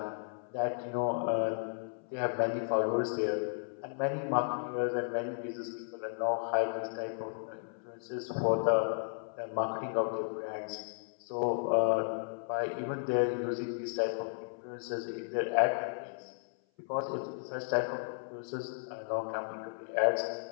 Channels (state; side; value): silent; right; 55 dB below the other